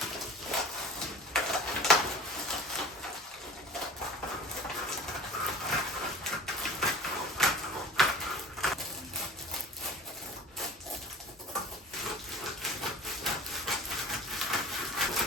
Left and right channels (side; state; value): both; normal; correlation 0.39